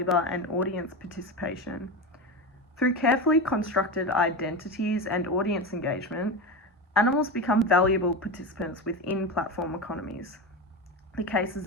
and audience participation. Through carefully constructed identities and audience engagement, animals become valuable participants within platform economies. The cases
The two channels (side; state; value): both; normal; correlation 0.21